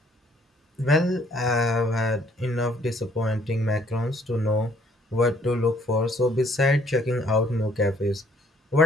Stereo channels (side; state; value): both; normal; correlation 0.63